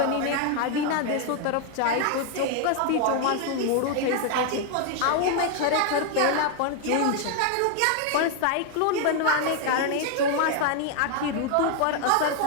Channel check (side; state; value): both; different; correlation 0.00